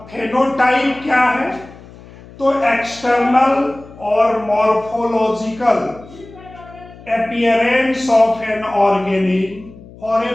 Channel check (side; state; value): left; noise; hum, 20 dB below the sound